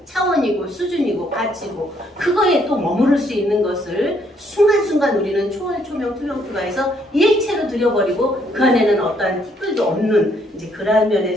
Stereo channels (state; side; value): normal; both; correlation 0.69